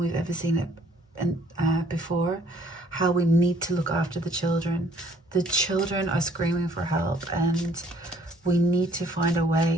ever seen it before, how we need to look after the children. The children are screaming for help, and we need to find a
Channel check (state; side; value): normal; both; correlation 0.60